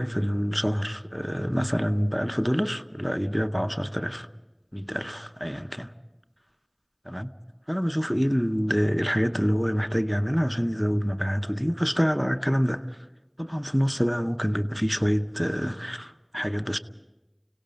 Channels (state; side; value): identical; both; correlation 1.00